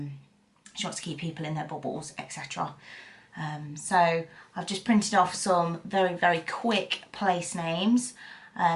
she wants to keep people in their bubbles, etc. So I've just printed off some very quick place names,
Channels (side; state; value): both; identical; correlation 1.00